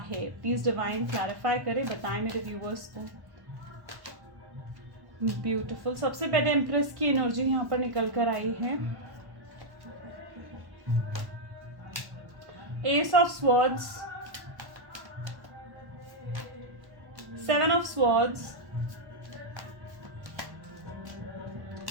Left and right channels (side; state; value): left; late; 1.1 ms